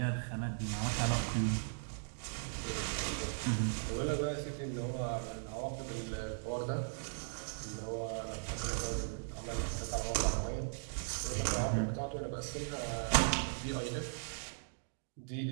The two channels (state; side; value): silent; left; digital silence